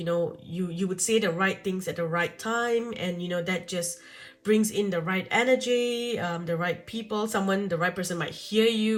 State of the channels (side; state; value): both; identical; correlation 1.00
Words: know, you would say the right things at the right time, and you know that just brings in the right energy, the right people. The right person might hear